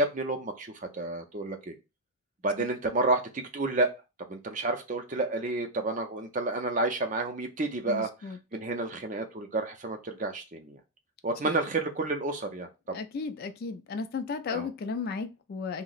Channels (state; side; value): normal; both; correlation -0.02